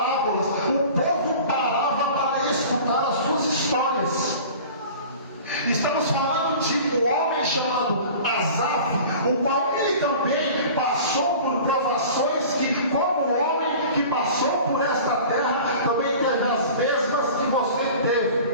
o povo parava para escutar as suas histórias. Estamos falando de um homem chamado Asaf, o qual ele também passou por provações que, como homem que passou por esta terra, também teve as mesmas que você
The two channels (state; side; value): inverted; both; correlation -0.41